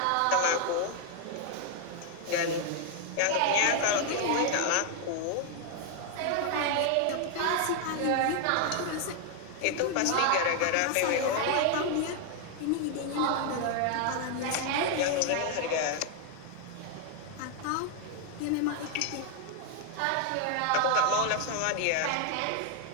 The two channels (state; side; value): different; both; correlation 0.01